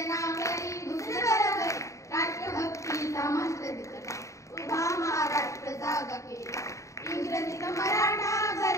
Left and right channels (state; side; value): late; right; 0.15 ms